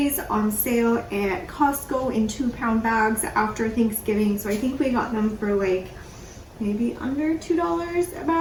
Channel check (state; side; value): identical; both; correlation 1.00